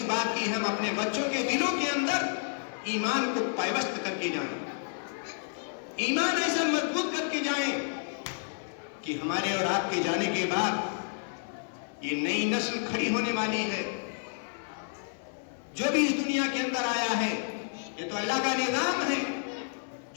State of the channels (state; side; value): silent; right; 58 dB below the other